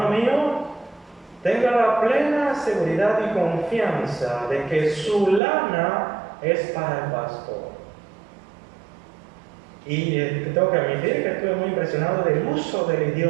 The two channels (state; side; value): drops out; left; at 5.4 s